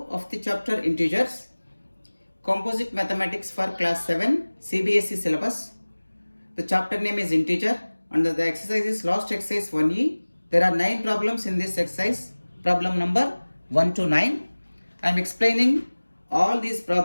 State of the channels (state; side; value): inverted; both; correlation -1.00